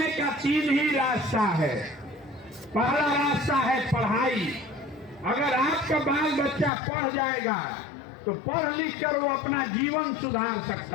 का 3 ही रास्ता है। पहला रास्ता है पढ़ाई। अगर आपका बाल बच्चा पढ़ जाएगा तो पढ़ लिख कर वो अपना जीवन सुधार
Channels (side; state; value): right; drops out; at 6.7 s